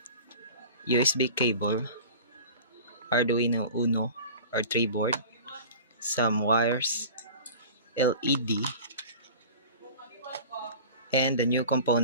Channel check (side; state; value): both; inverted; correlation -0.38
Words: USB cable, Arduino Uno or 3 board, some wires, LED, and the new